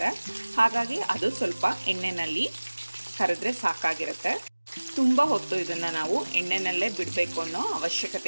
ಹಾಗಾಗಿ ಅದು ಸ್ವಲ್ಪ ಎಣ್ಣೆಯಲ್ಲಿ ಕರೆದ್ರೆ ಸಾಕಾಗಿರುತ್ತೆ. ತುಂಬ ಹೊತ್ತು ಇದನ್ನು ನಾವು ಎಣ್ಣೆನಲ್ಲೇ ಬಿಡಬೇಕು ಅನ್ನೋ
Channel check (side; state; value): both; inverted; correlation -1.00